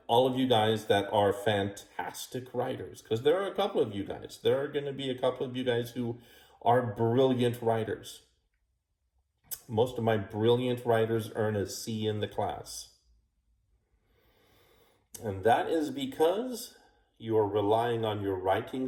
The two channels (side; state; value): both; identical; correlation 1.00